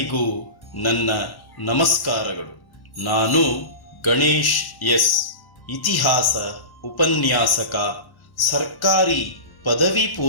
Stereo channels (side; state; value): right; late; 1.1 ms